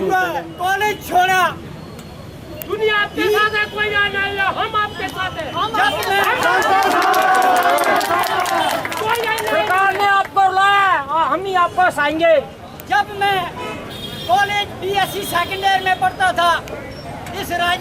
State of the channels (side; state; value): both; identical; correlation 1.00